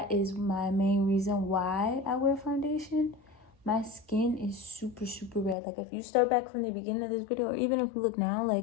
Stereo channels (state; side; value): drops out; right; at 5.6 s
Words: is my main reason why I wear foundation. My skin is super, super red. Like, if you start back from the beginning of this video, or even if you look now,